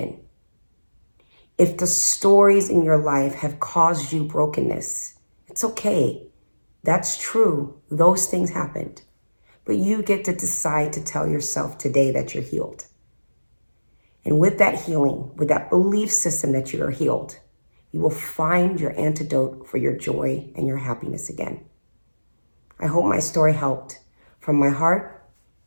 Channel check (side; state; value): both; inverted; correlation -1.00